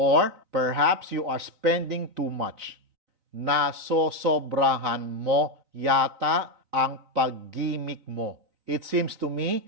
perhaps you are spending too much. Nasosobrahan mo yata ang paggimik mo. It seems to me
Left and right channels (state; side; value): late; left; 4.0 ms